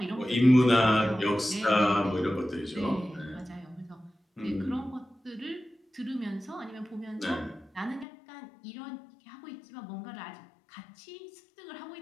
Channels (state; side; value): drops out; right; at 8.1 s